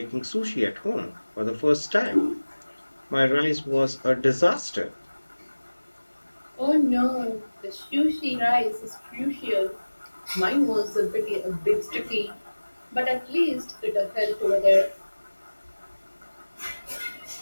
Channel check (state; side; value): inverted; both; correlation -1.00